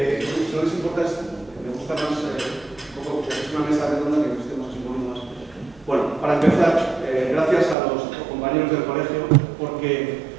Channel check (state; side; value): drops out; left; at 7.8 s